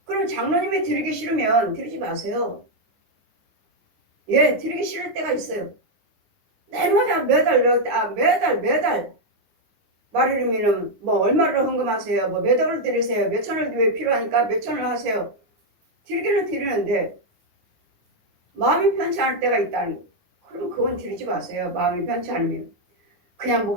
그럼 장로님이 드리기 싫으면 드리지 마세요. 예, 드리기 싫을 때가 있어요. 내마다 매달 말이르면은 얼마를 헌금하세요. 몇 억을 드리세요. 몇 천을 왜 필요하니까 몇 천을 하세요. 드리기는 드리는데 마음이 편치 않을 때가 있다는 거. 그럼 그건 드리지 마세요. 마음이 편치 않으면. 그냥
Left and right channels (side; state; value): left; late; 9.6 ms